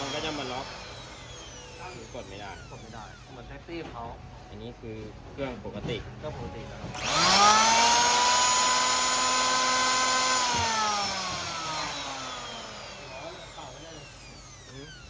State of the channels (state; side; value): identical; both; correlation 1.00